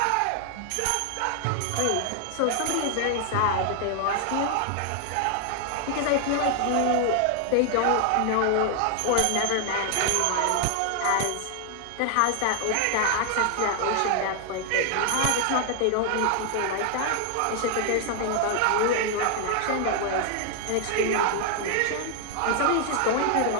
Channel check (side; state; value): both; different; correlation 0.00